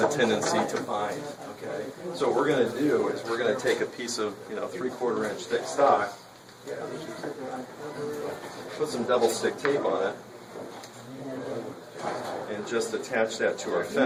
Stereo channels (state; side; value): identical; both; correlation 1.00